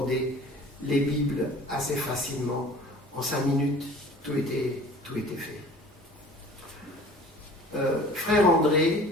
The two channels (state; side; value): normal; both; correlation 0.46